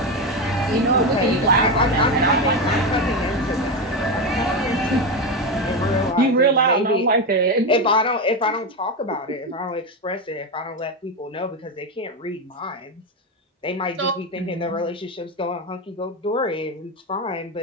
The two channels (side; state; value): both; normal; correlation 0.13